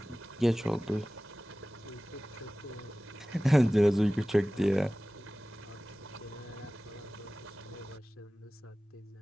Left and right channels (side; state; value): both; normal; correlation 0.97